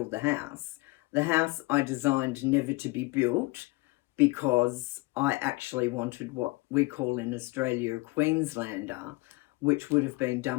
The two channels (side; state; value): right; quieter; 23.7 dB